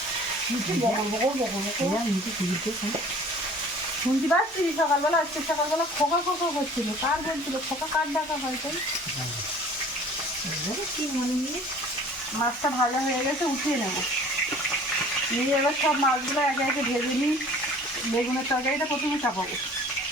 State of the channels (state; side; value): normal; both; correlation 0.49